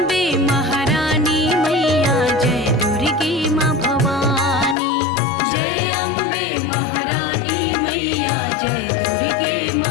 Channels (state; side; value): drops out; right; at 4.8 s